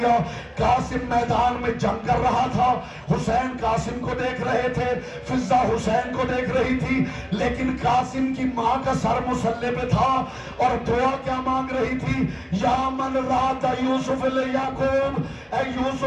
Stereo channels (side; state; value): both; identical; correlation 1.00